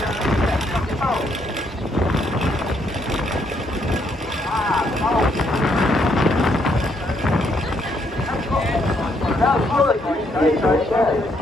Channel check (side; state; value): both; normal; correlation 0.73